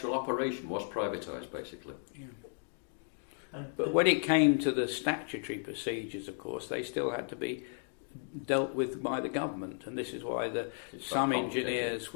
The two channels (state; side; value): silent; right; 55 dB below the other